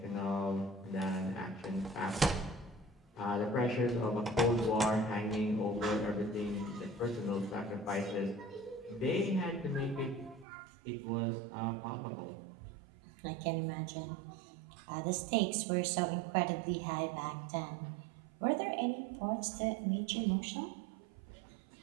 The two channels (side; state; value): left; drops out; at 10.5 s